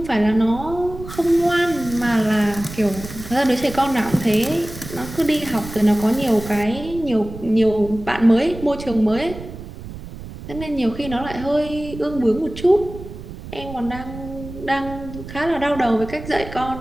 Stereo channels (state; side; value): noise; right; rumble, 12 dB below the sound